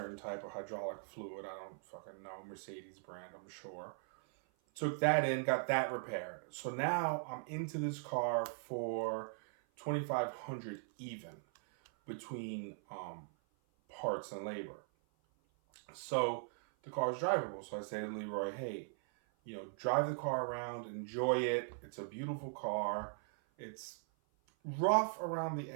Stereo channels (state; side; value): silent; left; 51 dB below the other